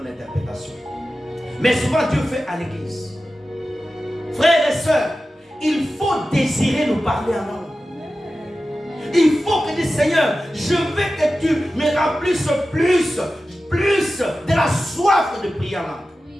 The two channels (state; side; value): normal; both; correlation 0.94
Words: l'interprétation. Mais souvent, Dieu fait à l'église. Frères et sœurs, il faut désirer nous parler en langue. Il faut que tu dis, Seigneur, je veux que tu me remplisses plus de la soif de prier en langue.